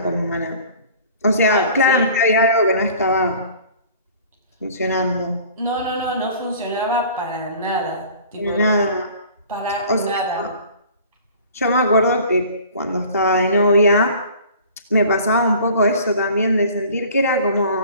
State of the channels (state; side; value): inverted; both; correlation -0.47